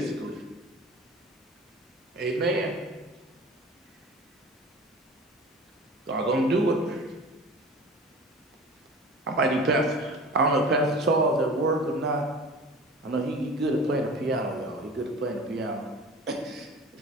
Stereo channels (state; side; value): normal; both; correlation 0.39